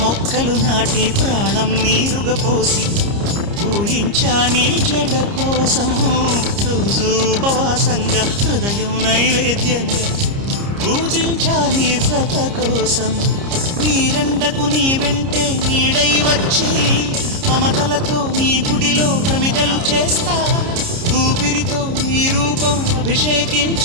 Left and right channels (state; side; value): late; left; 30 ms